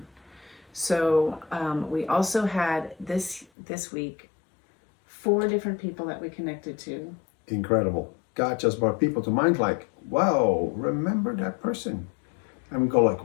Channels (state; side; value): drops out; right; at 3.5 s